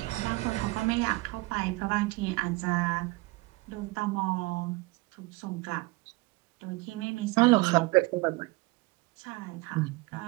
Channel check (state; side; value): quieter; left; 23.2 dB